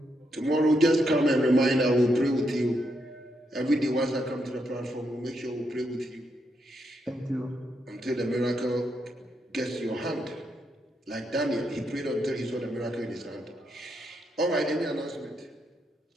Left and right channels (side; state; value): both; normal; correlation 0.80